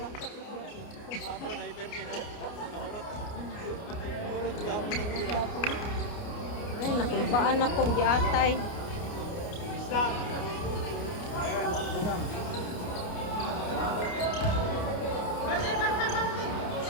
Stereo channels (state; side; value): late; right; 29 ms